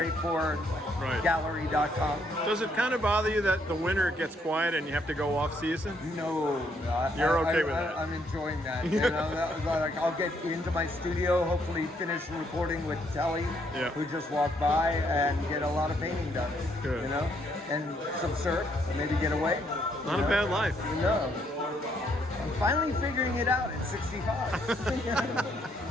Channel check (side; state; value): both; normal; correlation 0.71